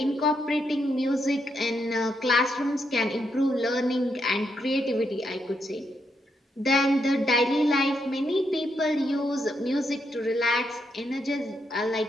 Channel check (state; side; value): normal; both; correlation 0.79